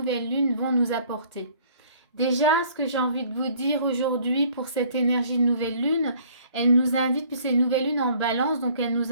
lune vont nous apporter. Déjà, ce que j'ai envie de vous dire aujourd'hui pour cette énergie de nouvelle lune, elle nous invite, puis c'est une nouvelle lune en balance, donc elle nous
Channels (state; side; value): inverted; both; correlation -0.57